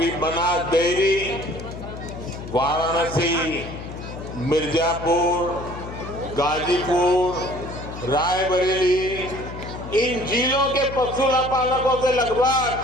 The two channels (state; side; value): noise; left; hum, 10 dB below the sound